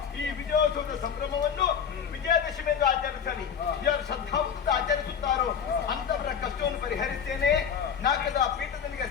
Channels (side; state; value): right; quieter; 7.5 dB